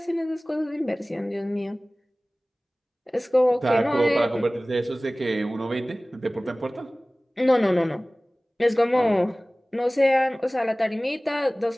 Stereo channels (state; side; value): normal; both; correlation 0.98